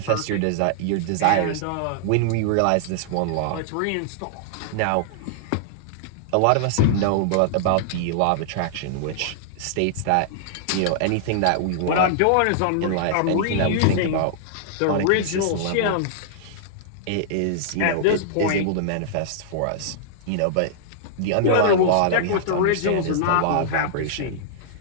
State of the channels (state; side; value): different; both; correlation -0.01